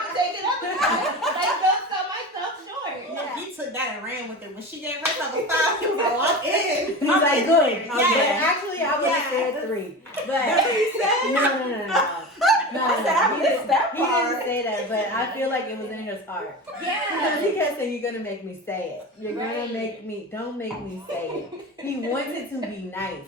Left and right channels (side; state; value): both; normal; correlation 0.29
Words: take it up a notch. Like, don't sell myself short. Yeah. He took that and ran with it. When she gave herself a 5, he was like, well, I'm in. He's like, good. Yeah. But actually, I would have said 3. But That's what he said? no. I said, I missed that He didn't part. say that, but I feel like it was in his heart. Because Yeah. he kept saying, you're going to make me say it. You're going Right. to make me, don't make me say it. He wants it to be nice.